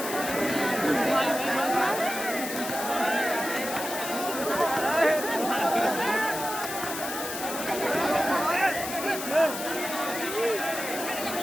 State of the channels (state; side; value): noise; left; hiss, 7 dB below the sound